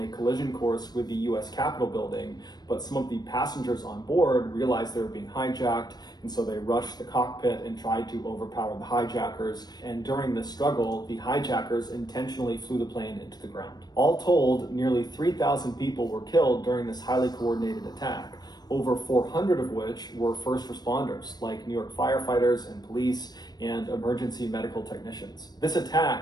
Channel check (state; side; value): late; right; 0.19 ms